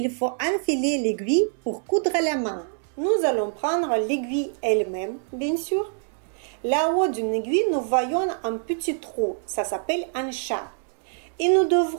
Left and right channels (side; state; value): left; silent; digital silence